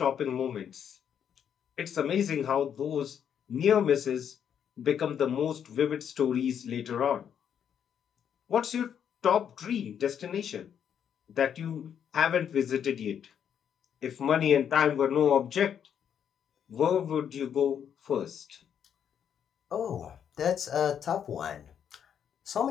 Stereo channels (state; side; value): quieter; right; 8.5 dB